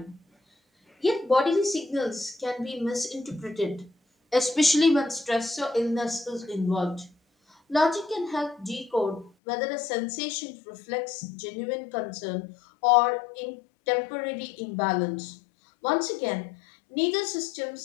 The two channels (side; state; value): right; drops out; at 9.3 s